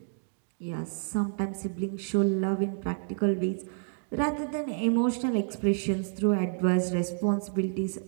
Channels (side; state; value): left; silent; digital silence